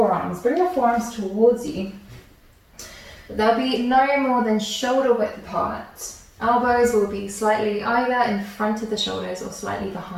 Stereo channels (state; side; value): identical; both; correlation 1.00